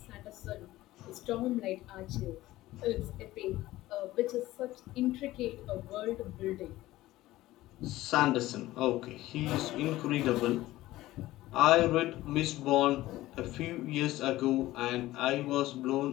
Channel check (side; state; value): right; quieter; 16.6 dB